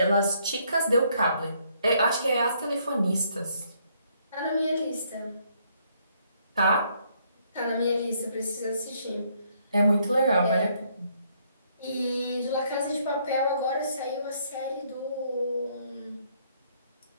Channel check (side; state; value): both; inverted; correlation -0.69